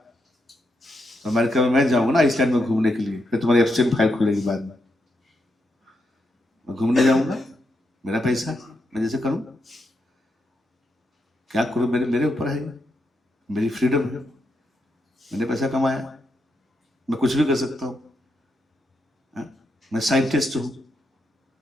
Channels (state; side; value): normal; both; correlation 0.82